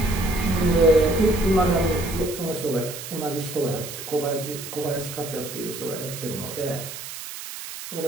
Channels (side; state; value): right; noise; hiss, 10 dB below the sound